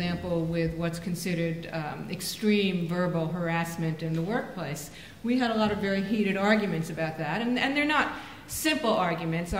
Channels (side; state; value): both; identical; correlation 1.00